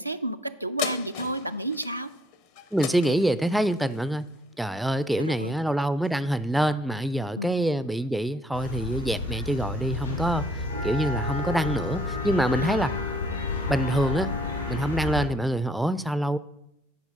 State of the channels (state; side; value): normal; both; correlation 0.64